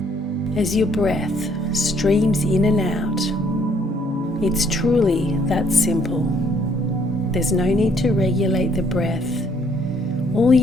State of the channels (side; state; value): both; normal; correlation 0.65